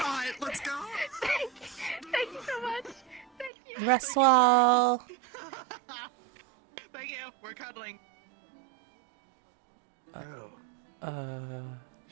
Let's go. Thank you so much. Thank you. Rest well. Thank you. We're cuddling.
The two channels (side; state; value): left; drops out; at 3.5 s